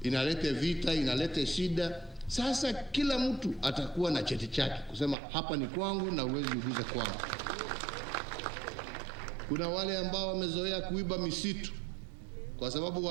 inalete vita, inalete shida. Sasa kila mtu atakuwa na cheti chake kusema hapa ni kwangu na uwezi uguze kwangu. Kuna wale ambao wamezoea kuiba misitu, kwa sababu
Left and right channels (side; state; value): left; drops out; at 5.2 s